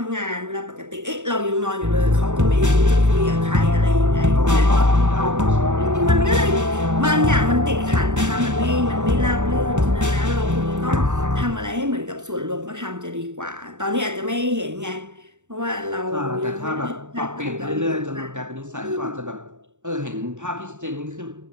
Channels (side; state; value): left; late; 0.84 ms